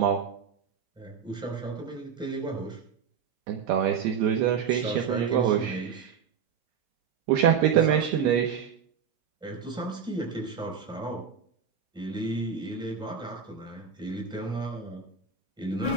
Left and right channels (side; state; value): left; quieter; 7.1 dB